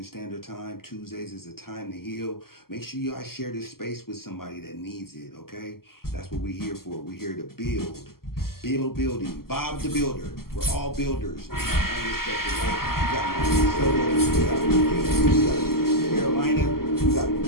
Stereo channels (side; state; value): right; late; 0.93 ms